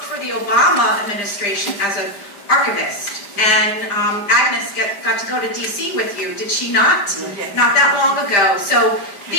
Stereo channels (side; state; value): right; late; 5.0 ms